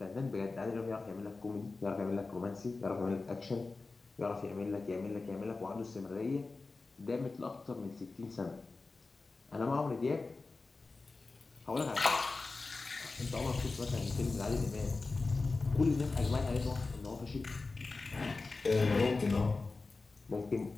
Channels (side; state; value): right; quieter; 3.7 dB